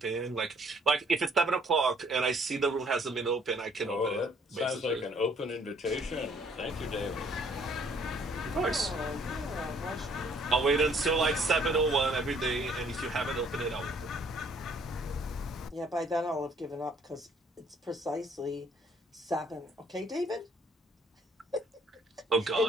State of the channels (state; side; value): normal; both; correlation 0.62